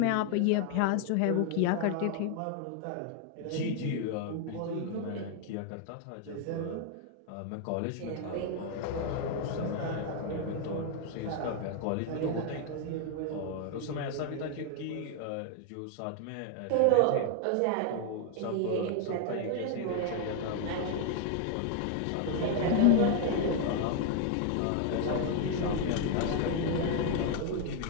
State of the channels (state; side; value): different; both; correlation 0.00